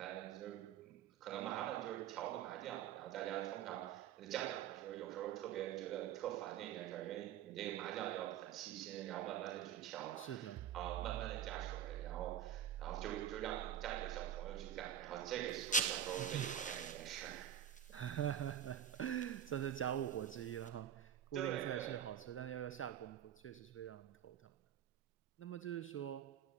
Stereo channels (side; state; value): left; quieter; 9.8 dB